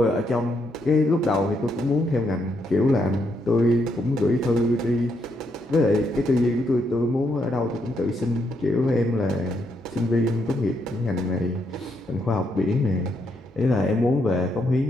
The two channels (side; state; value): both; normal; correlation 0.77